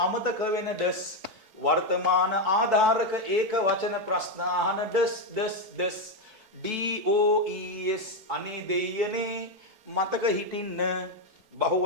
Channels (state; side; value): late; left; 4.6 ms